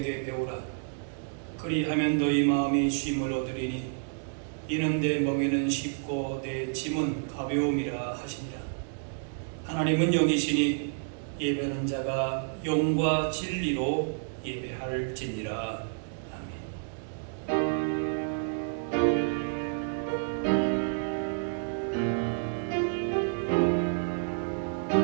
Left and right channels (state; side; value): silent; left; digital silence